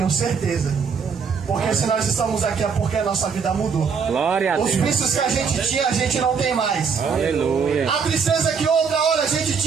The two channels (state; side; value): quieter; left; 6.0 dB